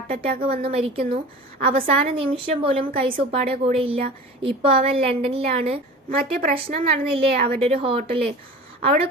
അറ്റാക്ക് വന്ന് മരിക്കുന്നു. അവസാന നിമിഷം പോലും കൈസ് ഉപ്പാടെ കൂടെ ഇല്ല. ഇപ്പോൾ അവൻ ലണ്ടനിലാണ്. മറ്റേ പ്രശ്നം നടന്നില്ലേ അവരുടെ ഒരു ഹോട്ടല്, അവിടെ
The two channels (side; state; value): both; normal; correlation 0.37